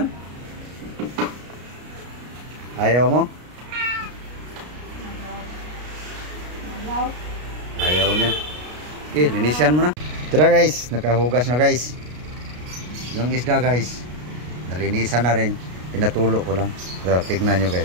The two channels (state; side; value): late; left; 33 ms